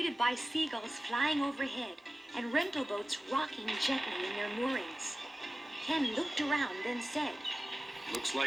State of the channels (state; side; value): normal; both; correlation 0.96